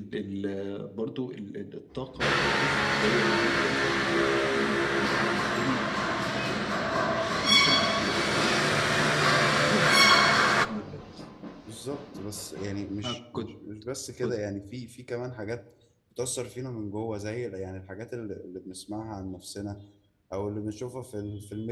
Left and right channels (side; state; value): both; identical; correlation 1.00